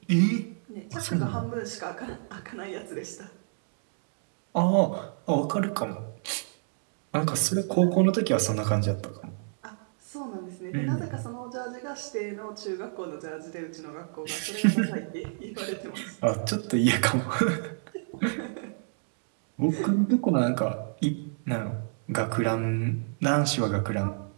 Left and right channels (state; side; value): silent; left; digital silence